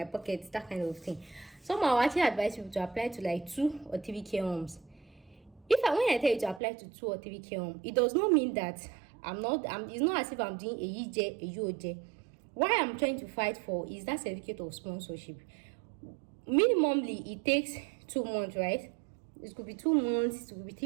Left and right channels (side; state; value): left; drops out; at 6.6 s